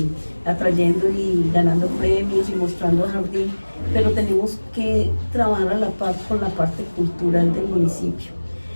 atrayendo y ganando premios y mostrando a Jardín, pero tenemos que trabajar a la par con la parte cultural del municipio.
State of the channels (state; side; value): inverted; both; correlation -1.00